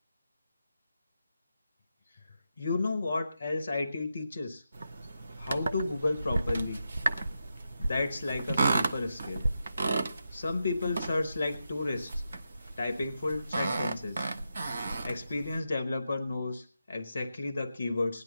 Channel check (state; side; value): inverted; both; correlation -0.87